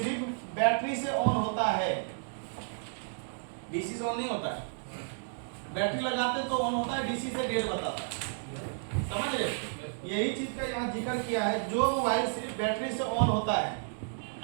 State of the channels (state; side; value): silent; left; digital silence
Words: बैटरी से ऑन होता है, डीसी से ऑन नहीं होता है, बैटरी लगाते तो ऑन होता है, डीसी से डेढ़ बताता है, समझ रहे। यही चीज का यहाँ जिक्र किया है, जो मोबाइल सिर्फ बैटरी से ऑन होता है,